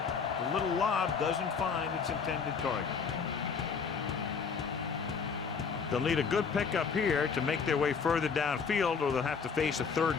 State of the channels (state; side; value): quieter; right; 5.8 dB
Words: The little lob doesn't find its intended target. They'll need a good pickup here to make their way further downfield, or they'll have to face a